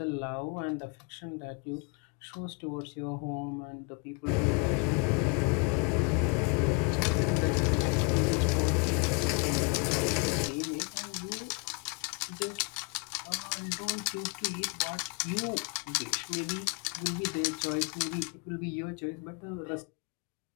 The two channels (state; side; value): quieter; right; 33.7 dB